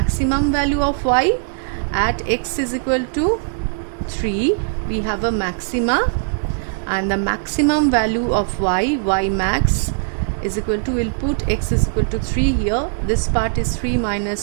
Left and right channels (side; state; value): left; silent; digital silence